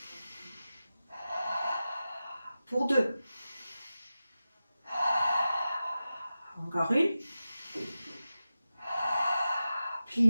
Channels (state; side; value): inverted; both; correlation -0.93